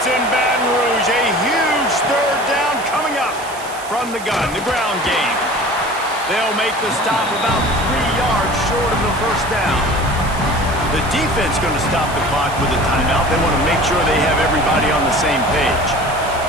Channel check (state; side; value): noise; right; hiss, 16 dB below the sound